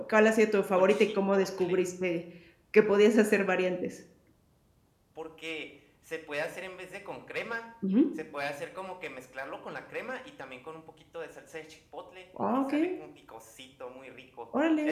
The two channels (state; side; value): identical; both; correlation 1.00